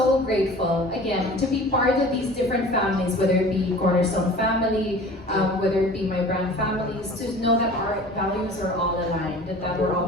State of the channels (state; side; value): normal; both; correlation 0.43